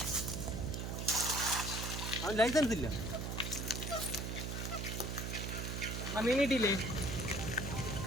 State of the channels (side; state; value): right; noise; hum, 3 dB below the sound